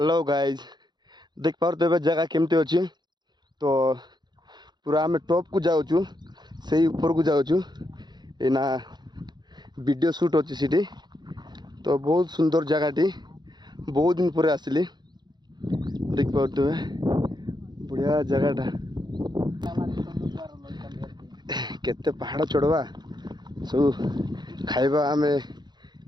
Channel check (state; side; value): late; left; 0.21 ms